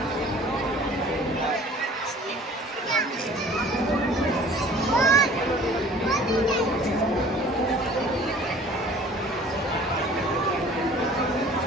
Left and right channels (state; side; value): normal; both; correlation 0.49